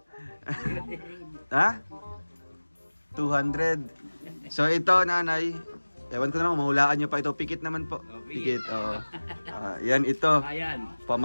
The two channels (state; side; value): inverted; both; correlation -1.00